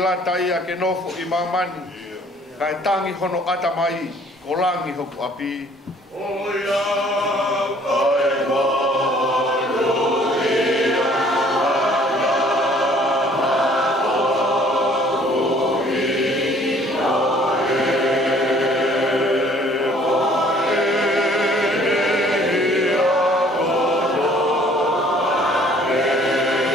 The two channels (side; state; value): both; normal; correlation 0.57